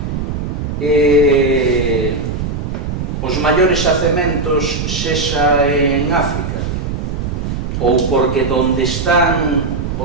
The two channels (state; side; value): noise; right; rumble, 4 dB below the sound